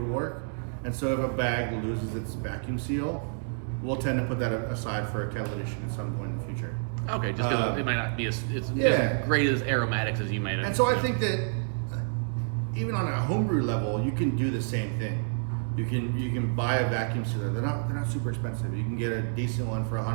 work. And so if a bag loses its vacuum seal, we'll tend to put that aside for a kettle edition at some point in the future. Okay, just because it might not be as great as aromatics as you might have. And so I think that even on a homebrew level, you can do the same thing. You can buy a vacuum sealer. They're not super expensive. You can get a decent one for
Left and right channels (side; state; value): left; silent; digital silence